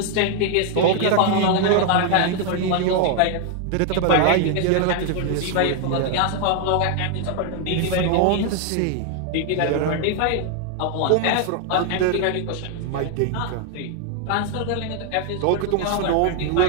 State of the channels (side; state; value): both; different; correlation 0.00